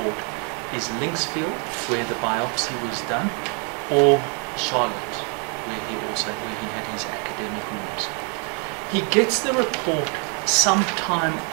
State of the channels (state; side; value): quieter; left; 38.1 dB